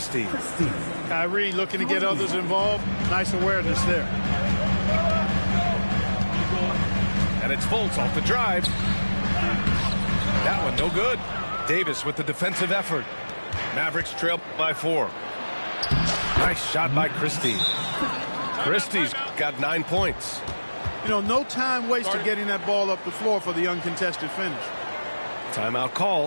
Kyrie looking to get others involved. Nice awareness there. And it's Fultz off the drive. That one no good. Davis with the defensive effort. Mavericks trail by 4. Nice shot by Christie. Christie's got 9 points. You know, no time wasted getting that ball up the floor for the uncontested finish. Timeout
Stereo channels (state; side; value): inverted; both; correlation -1.00